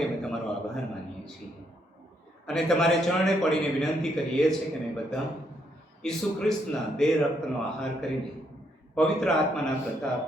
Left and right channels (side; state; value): both; normal; correlation 0.74